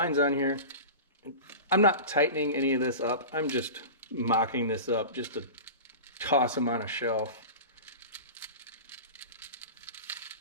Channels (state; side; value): inverted; both; correlation -0.31